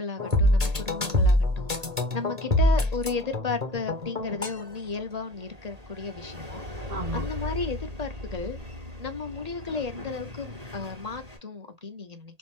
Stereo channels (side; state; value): left; late; 1.8 ms